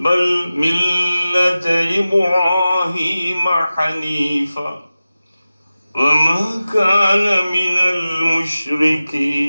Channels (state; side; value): inverted; both; correlation -0.96